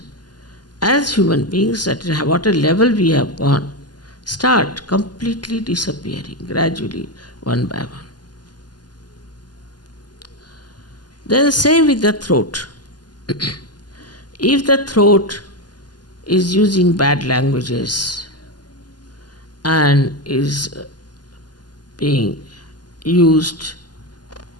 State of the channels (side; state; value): right; late; 0.70 ms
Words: as human beings, at what a level we have gone, start completely disappearing gradually, one by one. Then same with the throat. If the throat is using bad languages and is being used